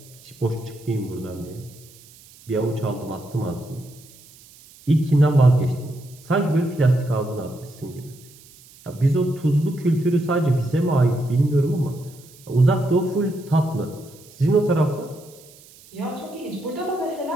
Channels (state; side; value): noise; right; hiss, 24 dB below the sound